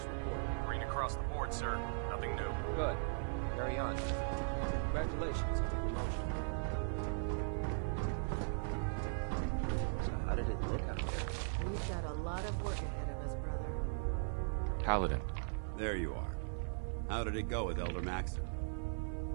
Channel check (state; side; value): silent; left; 52 dB below the other